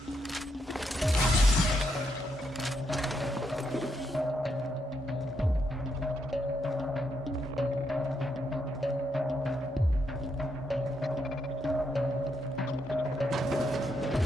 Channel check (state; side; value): normal; both; correlation 0.79